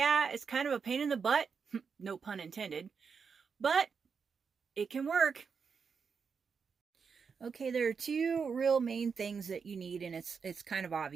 it's kind of a pain in the butt. No pun intended. But it can work. Okay, there are two real main things that you need, and it's kind of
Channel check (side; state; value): left; quieter; 5.9 dB